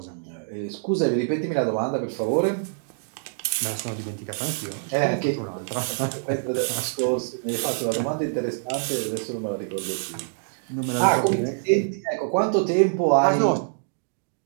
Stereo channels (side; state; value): left; silent; digital silence